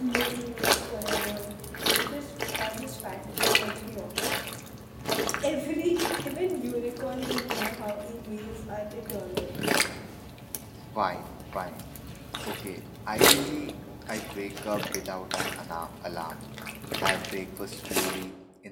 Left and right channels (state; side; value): identical; both; correlation 1.00